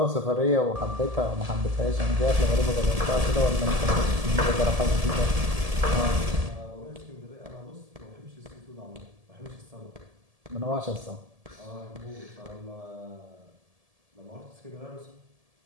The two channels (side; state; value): left; late; 1.7 ms